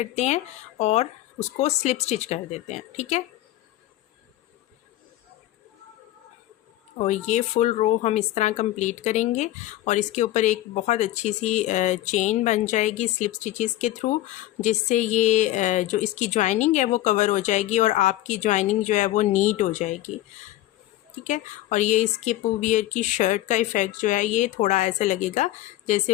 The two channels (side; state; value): right; quieter; 15.1 dB